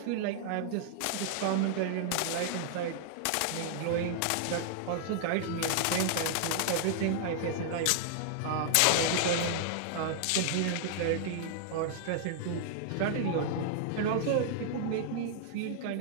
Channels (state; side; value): different; both; correlation -0.01